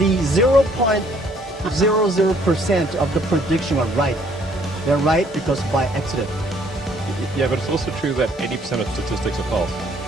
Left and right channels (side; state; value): both; normal; correlation 0.63